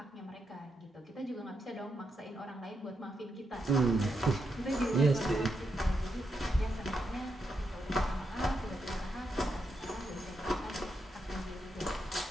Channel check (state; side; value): normal; both; correlation 0.83